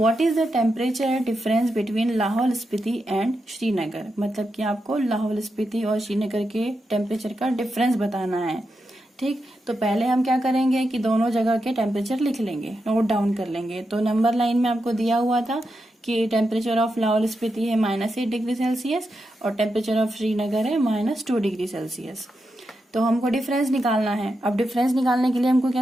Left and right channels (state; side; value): normal; both; correlation 0.86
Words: is the temperature difference between Lahaul Spiti and Srinagar. मतलब कि आपको लाहौल स्पीति और श्रीनगर के टेम्परेचर का डिफरेंस बताना है। ठीक। तो पहले हम क्या करेंगे कि दोनों जगह के टेम्परेचर लिख लेंगे, नोट डाउन कर लेंगे। तो नंबर लाइन में आपको दिया हुआ था कि टेम्परेचर ऑफ लाहौल स्पीति है -8 डिग्री सेल्सियस और टेम्परेचर ऑफ श्रीनगर है -2 डिग्री सेल्सियस। तो हमको डिफरेंस निकालना है। अब डिफरेंस निकालने के लिए हमको